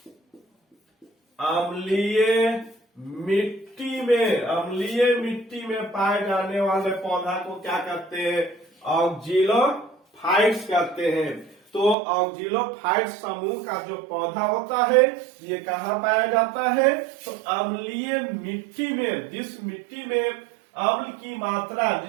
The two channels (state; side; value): drops out; left; at 12.0 s